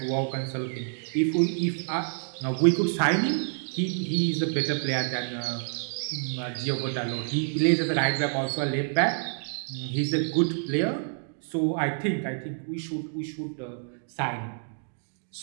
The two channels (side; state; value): left; silent; digital silence